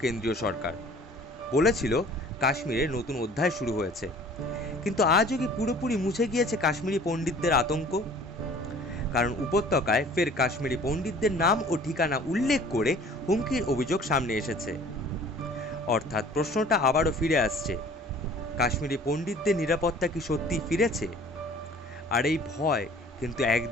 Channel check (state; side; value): normal; both; correlation 0.49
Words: কেন্দ্রীয় সরকার। বলেছিল কাশ্মীরে নতুন অধ্যায় শুরু হয়েছে। কিন্তু আজও কি পুরোপুরি মুছে গিয়েছে কাশ্মীরি পণ্ডিতদের আতঙ্ক? কারণ উপত্যকায় ফের কাশ্মীরি পণ্ডিতদের নাম ও ঠিকানা উল্লেখ করে হুমকির অভিযোগ সামনে এসেছে। অর্থাৎ প্রশ্নটা আবারও ফিরে আসছে, কাশ্মীরি পণ্ডিতদের নিরাপত্তা কি সত্যিই ফিরেছে? আর এই ভয় কিন্তু